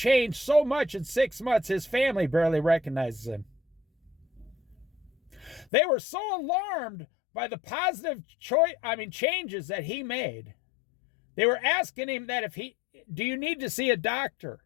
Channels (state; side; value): drops out; right; at 5.7 s